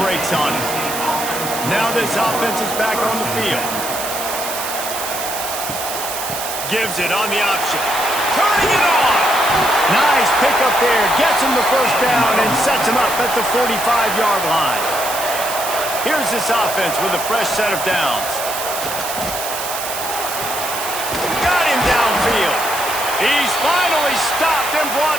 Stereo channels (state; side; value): noise; right; hiss, 6 dB below the sound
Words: brakes on it. Now this offense is back on the field. Gives it on the option. Turning it on. Nice pickup there. Gets him the first down and sets him up at the 45-yard line. Here's this offense with a fresh set of downs. Got him downfield. He's finally stopped and